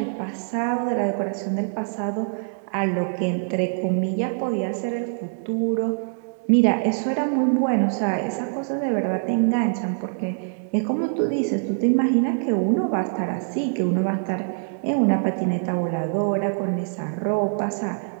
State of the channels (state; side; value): silent; left; digital silence